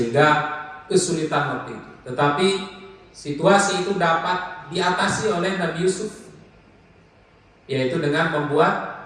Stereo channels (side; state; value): both; identical; correlation 1.00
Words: kesulitan waktu itu. Tetapi situasi itu dapat diatasi oleh Nabi Yusuf, yaitu dengan membuat